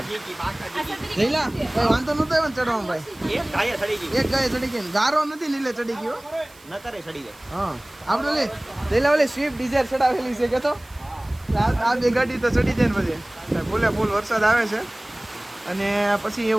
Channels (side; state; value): right; noise; hiss, 26 dB below the sound